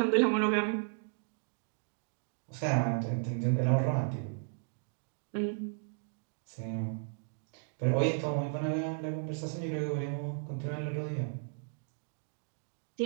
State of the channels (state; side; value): silent; left; 55 dB below the other